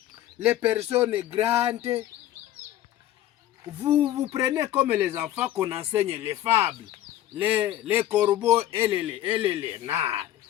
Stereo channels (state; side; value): quieter; right; 13.1 dB